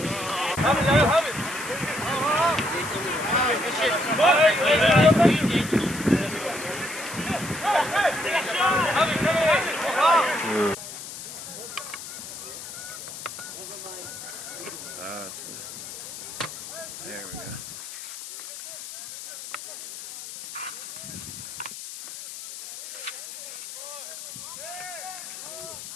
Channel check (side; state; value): left; noise; hiss, 10 dB below the sound